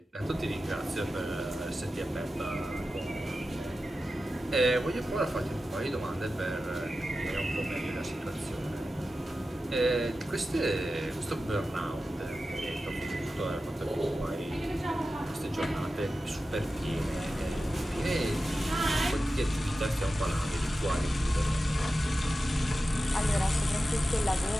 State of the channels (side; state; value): both; normal; correlation 0.93